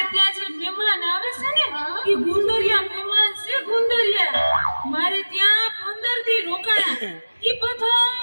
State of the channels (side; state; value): both; inverted; correlation -1.00